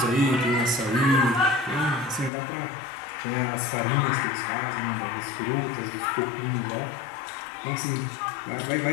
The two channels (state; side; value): drops out; right; at 2.3 s